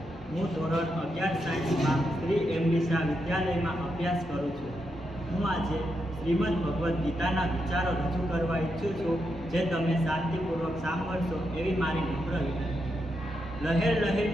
હું ધોરણ 11 સાયન્સમાં શ્રી એમડી શાહ વિદ્યાલયમાં અભ્યાસ કરું છું. હું આજે શ્રીમદ ભગવદ્ ગીતાના વિચારો રજૂ કરવા ઈચ્છું છું, જે તમે શાંતિપૂર્વક સાંભળશો એવી મારી નમ્ર વિનંતી. લહેર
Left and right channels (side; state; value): both; normal; correlation 0.83